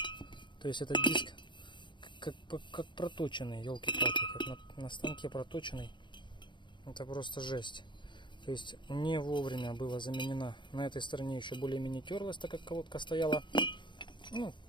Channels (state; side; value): late; right; 0.22 ms